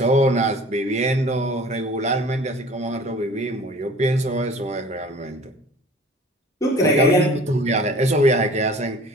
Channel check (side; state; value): both; normal; correlation 0.46